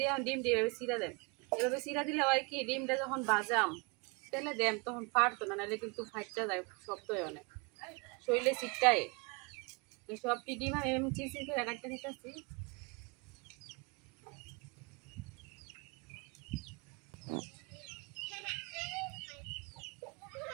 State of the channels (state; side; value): quieter; left; 29.4 dB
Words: এখন ডিমটি এভাবে সিরা দেন। এভাবে সিরা দিলে হয় কি, ডিমটা যখন বাজাম তেলে দেন তখন ফাটতো না, নাহলে কিন্তু ফাটতে যায়, শক্ত হয় অনেক, শরীরে চিটকায়। সবটি ডিম আমি চিচি করে কাটতে দিতেছি।